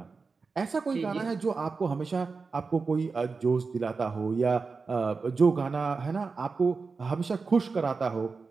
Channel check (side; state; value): left; quieter; 4.5 dB